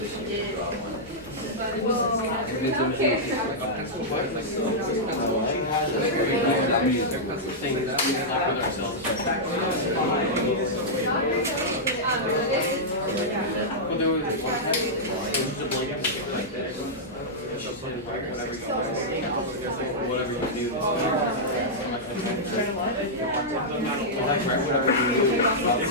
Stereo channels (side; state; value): both; normal; correlation -0.09